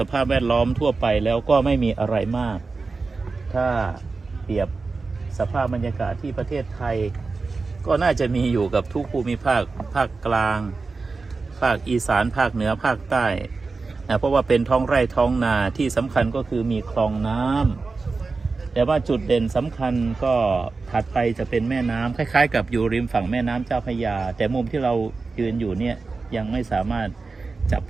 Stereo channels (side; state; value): left; quieter; 4.1 dB